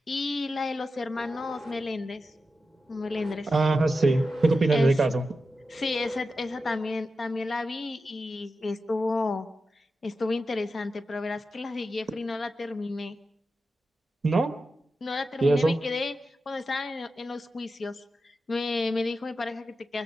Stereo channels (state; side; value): normal; both; correlation 0.90